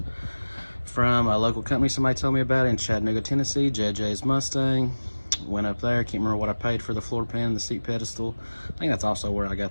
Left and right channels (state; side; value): inverted; both; correlation -1.00